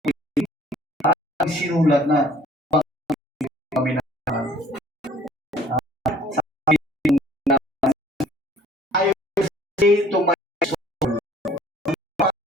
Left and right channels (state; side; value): normal; both; correlation 0.55